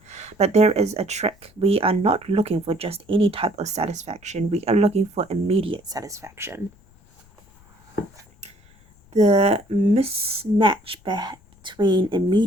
But there is a trick. We are not looking for just any type of satisfaction. We are looking for immediate satisfaction. The mismatch between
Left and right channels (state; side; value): noise; left; rumble, 29 dB below the sound